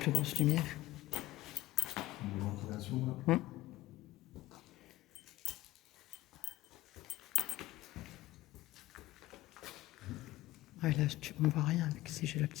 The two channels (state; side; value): quieter; right; 16.2 dB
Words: grosse lumière. Ouais, là, on ne voit rien avec si j'ai la